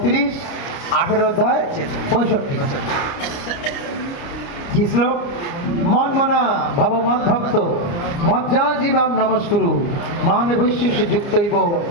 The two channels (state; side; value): late; right; 29 ms